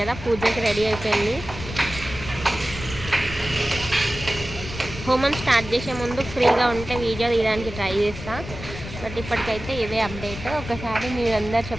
పూజకి రెడీ అయిపోయింది. హోమం స్టార్ట్ చేసే ముందు ఫ్రీగా ఉంటే వీడియో తీయడానికి ట్రై చేస్తా. బట్ ఇప్పటికైతే ఇదే అప్డేట్. ఒకసారి మీరందరూ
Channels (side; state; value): left; noise; rumble, 10 dB below the sound